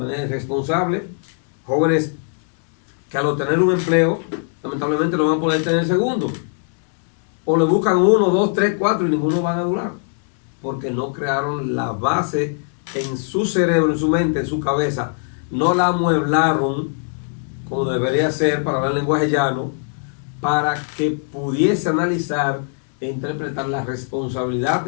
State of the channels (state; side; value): silent; right; 65 dB below the other